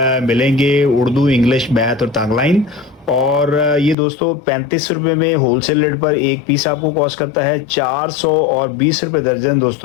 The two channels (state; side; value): drops out; right; at 4.0 s